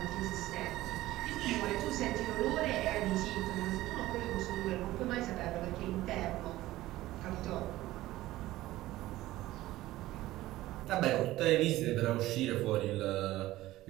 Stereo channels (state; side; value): quieter; left; 16.4 dB